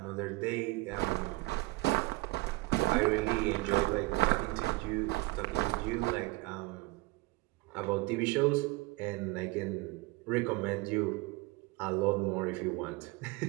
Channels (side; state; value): left; quieter; 23.0 dB